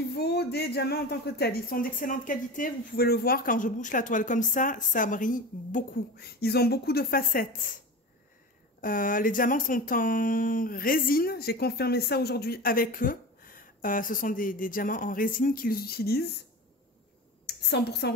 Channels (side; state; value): both; normal; correlation 0.30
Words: des diamants en tant que tels, ils sont d'excellente qualité. Vous pouvez le voir quand je bouge la toile comme ça brille beaucoup. Ils ont beaucoup de facettes. Les diamants sont en résine. J'ai confirmé ça aujourd'hui avec eux. Ce sont des diamants en résine qu'ils utilisent. 100%